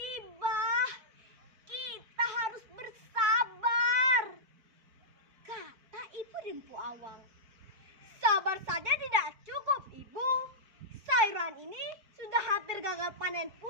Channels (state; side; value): late; left; 4.5 ms